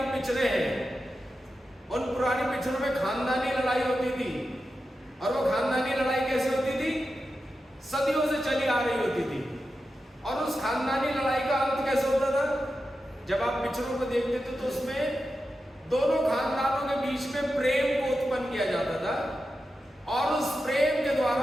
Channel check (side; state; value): both; normal; correlation 0.90